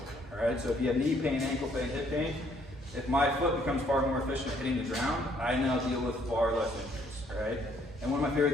all right? So if you have knee pain, ankle pain, hip pain, if my foot becomes far more efficient at hitting the ground, I now deal with far less injuries, all right? And one of my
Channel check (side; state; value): both; normal; correlation 0.66